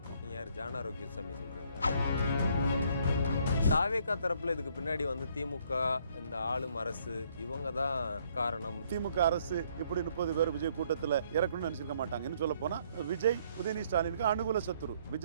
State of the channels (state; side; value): inverted; both; correlation -0.66